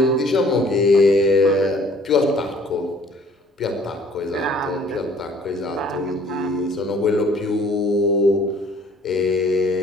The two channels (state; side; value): normal; both; correlation 0.56